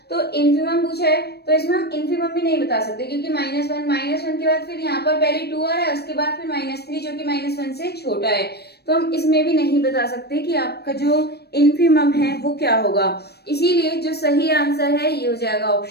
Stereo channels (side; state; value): right; late; 0.47 ms